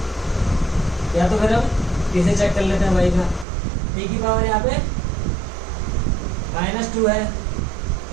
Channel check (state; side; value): drops out; left; at 3.5 s